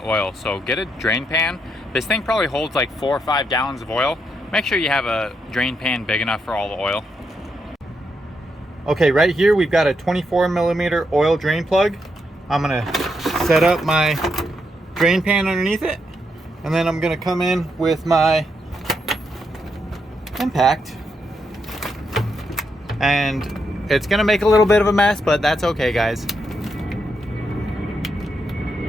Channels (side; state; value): both; normal; correlation 0.81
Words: oil. So get a drain pan. This thing probably holds like 4 or 5 gallons of oil. Make sure you have a drain pan big enough for all the oil. Okay, right here we've got a 24mm oil drain plug. I'm going to set up my drain pan underneath it. And then I'm going to come in with my impact. And it's gonna make a little bit of a mess, but that's okay, guys.